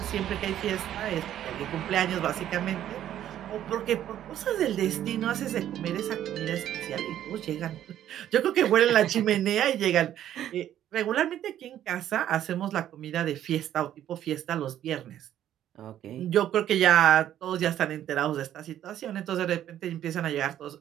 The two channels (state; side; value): quieter; left; 11.4 dB